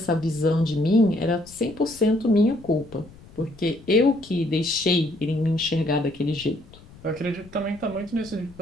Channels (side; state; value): left; noise; rumble, 22 dB below the sound